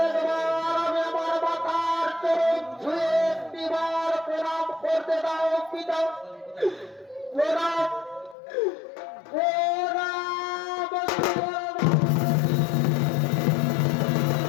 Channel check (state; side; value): drops out; right; at 8.3 s